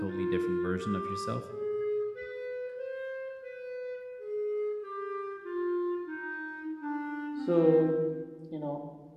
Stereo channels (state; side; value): identical; both; correlation 1.00